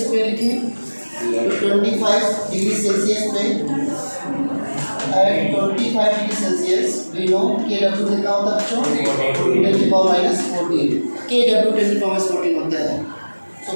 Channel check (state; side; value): inverted; both; correlation -1.00